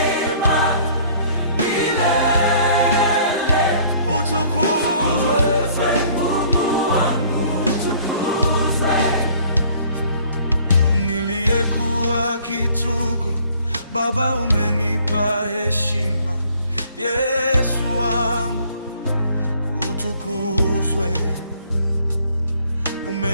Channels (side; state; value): both; inverted; correlation -0.57